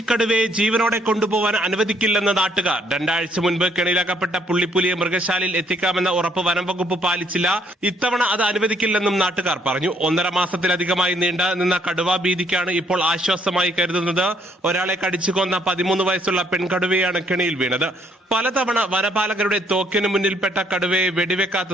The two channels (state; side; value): normal; both; correlation 0.67